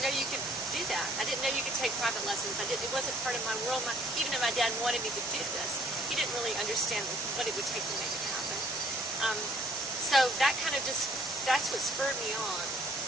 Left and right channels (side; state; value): both; normal; correlation 0.61